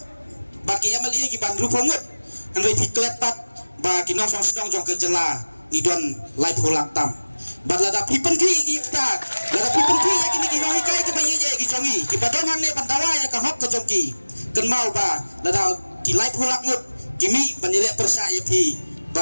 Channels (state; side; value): inverted; both; correlation -1.00